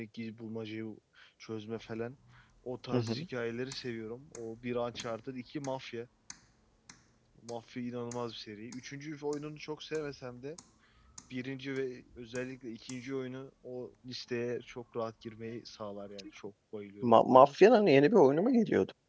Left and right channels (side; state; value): both; identical; correlation 1.00